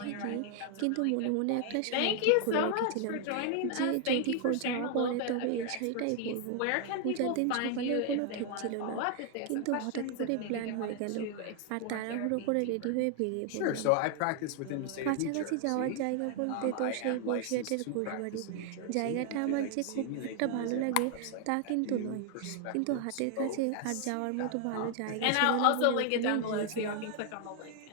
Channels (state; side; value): different; both; correlation 0.00